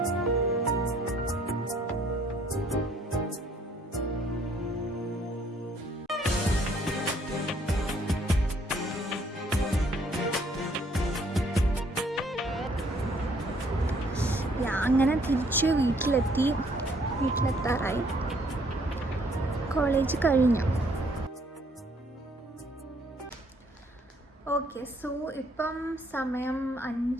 അങ്ങനെ തിരിച്ച് വീട്ടിലെത്താറായി. കോളേജ് കഴിഞ്ഞു. ഓക്കെ, സോ ഇപ്പം സമയം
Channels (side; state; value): both; normal; correlation 0.64